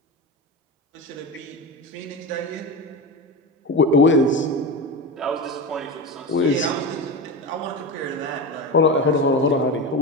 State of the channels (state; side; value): normal; both; correlation 0.22